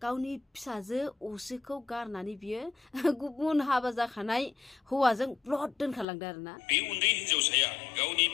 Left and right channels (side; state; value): right; drops out; at 6.1 s